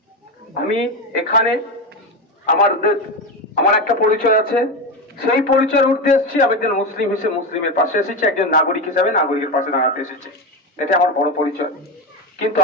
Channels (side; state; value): both; normal; correlation 0.15